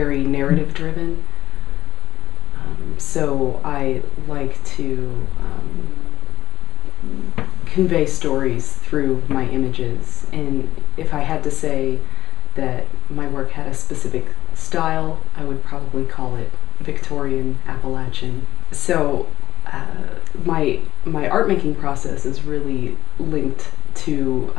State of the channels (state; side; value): quieter; right; 13.3 dB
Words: narrative driven, so I like to convey stories through my images. And if I had to say that my work had a specific style, I would probably call it Victorian Appalachian. So my art making process is really linked to